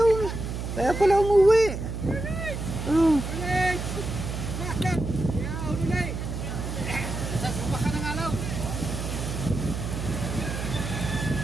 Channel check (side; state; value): right; noise; hum, 5 dB below the sound